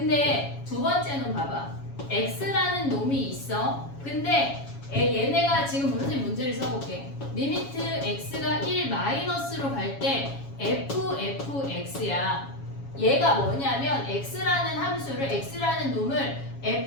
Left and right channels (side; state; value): right; late; 7.2 ms